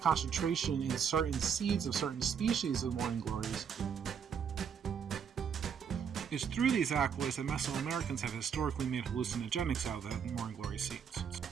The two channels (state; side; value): quieter; left; 7.2 dB